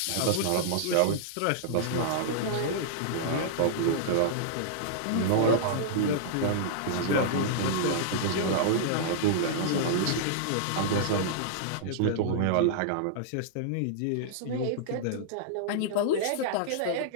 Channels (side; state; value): both; different; correlation -0.02